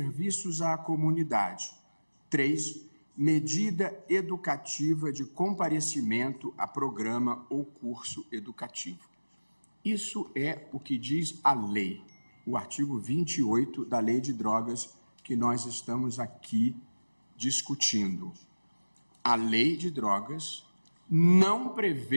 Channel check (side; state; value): both; inverted; correlation -1.00